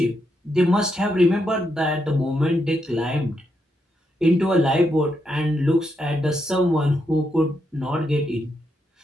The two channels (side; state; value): both; normal; correlation 0.81